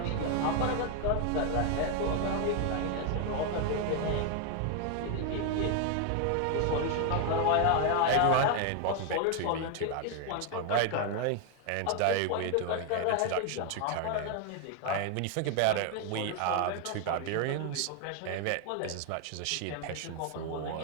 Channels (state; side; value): different; both; correlation 0.01